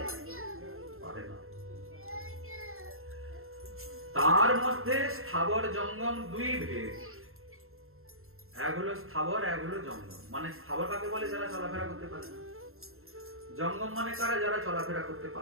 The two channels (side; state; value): left; late; 0.61 ms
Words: পারে না। তার মধ্যে স্থাবর জঙ্গম দুই ভেদ, এক হলো স্থাবর, এক হলো জঙ্গম। মানে স্থাবর কাকে বলে? যারা চলাফেরা করতে পারে না। জঙ্গম মানে কারা? যারা চলাফেরা করতে